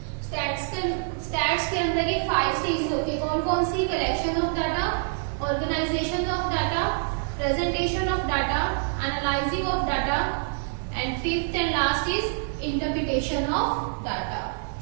स्टैट्स के अंदर। ये 5 स्टेजेस होती है, कौन कौन सी, collection of data, organisation of data, presentation of data, analysing of data, and fifth and last is interpretation of data.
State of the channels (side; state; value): left; silent; digital silence